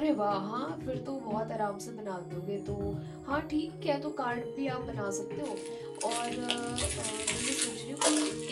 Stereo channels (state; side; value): identical; both; correlation 1.00